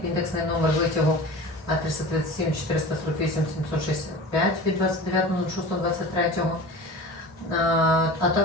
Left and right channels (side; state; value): both; normal; correlation 0.35